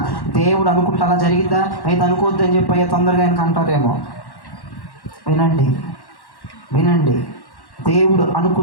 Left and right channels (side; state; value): right; late; 1.1 ms